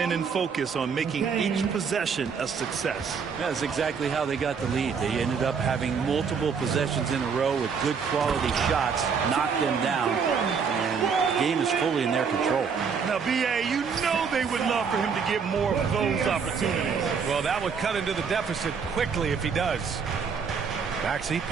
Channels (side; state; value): left; quieter; 6.1 dB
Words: and focused on making each possession a success. That's exactly how they got the lead. They ended up having multiple possessions in a row with good quality shots, knocked them down, and the game is fully in their control. Now, B.A., you know they would love for him to get more of those opportunities. Well, that would cut into the deficit quickly if he does. Maxey